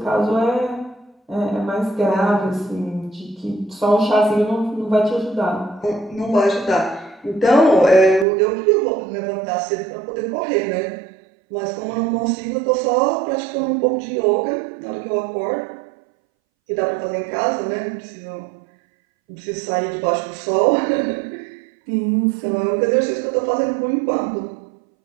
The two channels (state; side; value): drops out; left; at 8.2 s